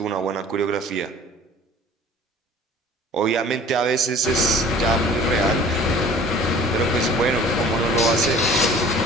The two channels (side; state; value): both; normal; correlation 0.47